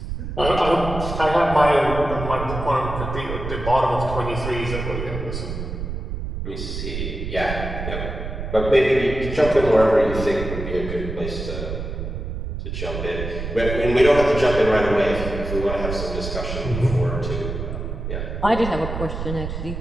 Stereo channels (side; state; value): right; noise; rumble, 6 dB below the sound